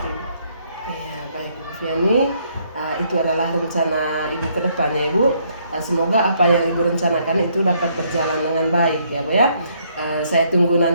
Ya, baik Bu Viani, itu adalah rencana Ibu ke depannya Ibu. Semoga apa yang Ibu rencanakan itu dapat berjalan dengan baik ya Bu ya. Saya tunggu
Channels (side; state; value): both; inverted; correlation -0.69